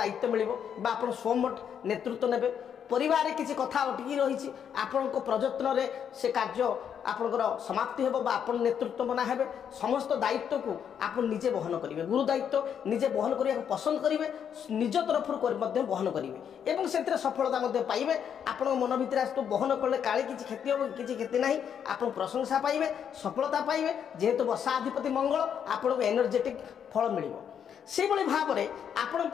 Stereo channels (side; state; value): right; quieter; 8.2 dB